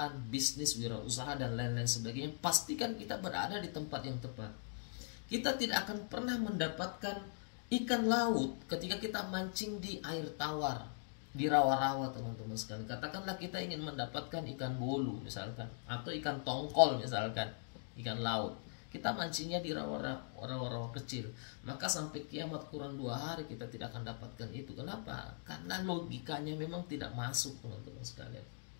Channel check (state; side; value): silent; right; digital silence